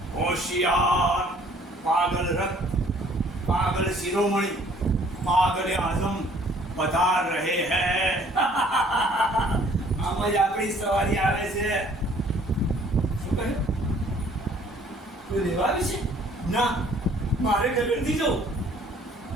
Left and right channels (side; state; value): both; normal; correlation 0.57